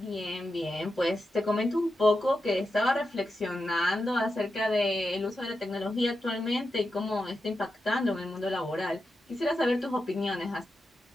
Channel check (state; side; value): normal; both; correlation 0.89